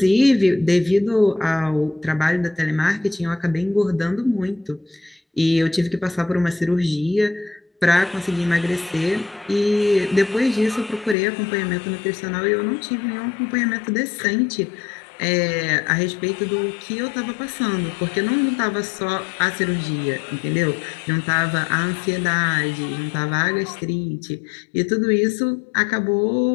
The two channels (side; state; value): right; drops out; at 11.2 s